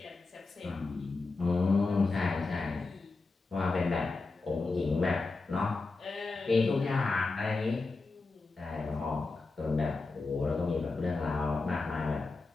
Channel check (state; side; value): quieter; right; 3.7 dB